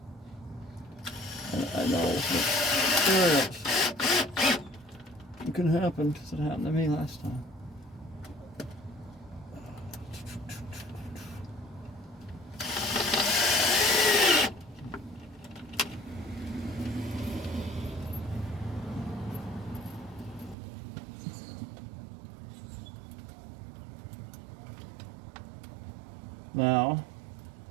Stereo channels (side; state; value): left; drops out; at 20.6 s